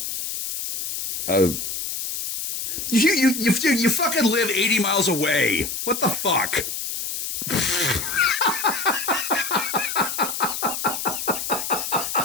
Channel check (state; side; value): noise; left; hiss, 4 dB below the sound